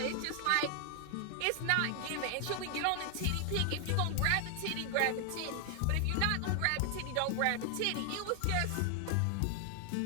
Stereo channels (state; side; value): different; both; correlation 0.00